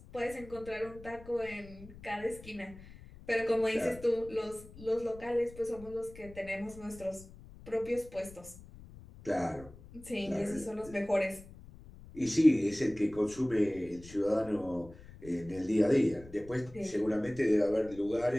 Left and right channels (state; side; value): noise; left; rumble, 18 dB below the sound